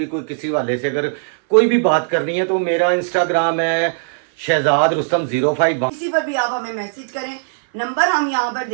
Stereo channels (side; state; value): left; silent; 61 dB below the other